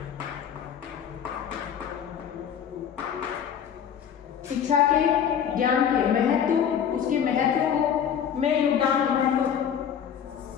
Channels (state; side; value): quieter; right; 8.5 dB